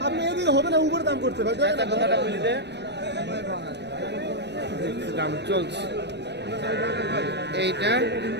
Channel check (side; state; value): left; late; 0.50 ms